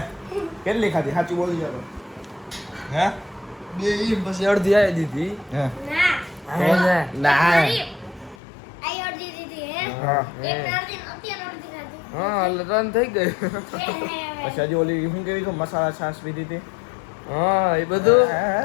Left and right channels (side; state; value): right; drops out; at 8.3 s